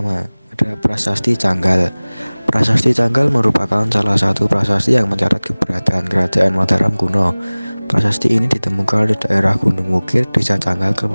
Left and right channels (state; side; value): inverted; both; correlation -1.00